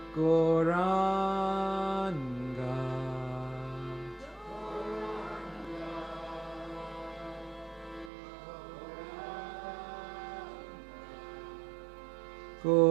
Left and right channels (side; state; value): left; drops out; at 8.1 s